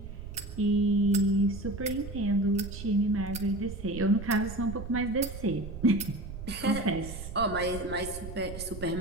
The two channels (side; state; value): right; noise; rumble, 10 dB below the sound